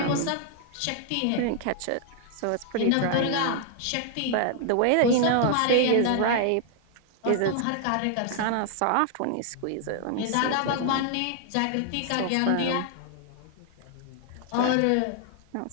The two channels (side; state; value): both; different; correlation 0.00